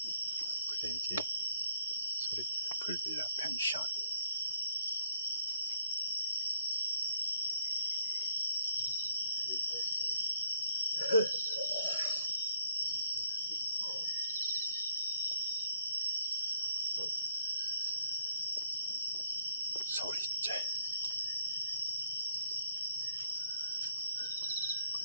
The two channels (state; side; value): inverted; both; correlation -0.66